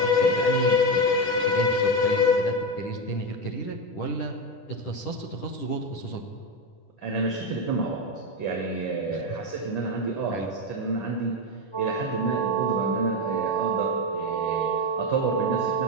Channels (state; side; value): late; right; 10 ms